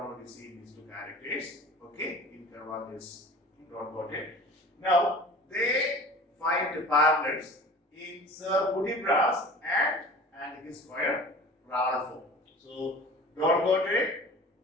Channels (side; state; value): both; normal; correlation 0.41